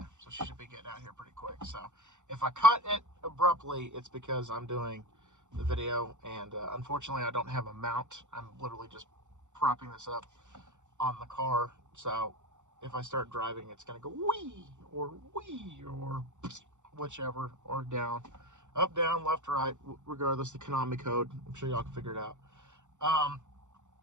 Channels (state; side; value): late; left; 0.85 ms